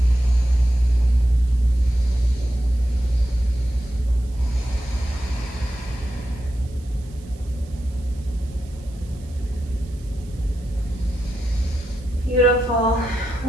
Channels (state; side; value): noise; right; hiss, 26 dB below the sound